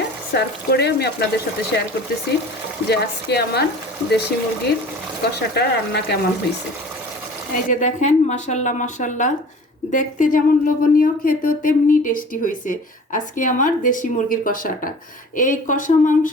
সার্ভ করে আমি আপনাদের সাথে শেয়ার করতেছি যে আজকে আমার দেশি মুরগির কষাটা রান্না কেমন হয়েছে। এই যে দেখেন মাশাআল্লাহ মাশাআল্লাহ দেখতে যেমন লোভনীয়, খেতেও তেমনি টেস্টি হয়েছে আজকে আমার দেশি মুরগির কষাটা। এই কষা মাংস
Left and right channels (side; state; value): both; normal; correlation 0.43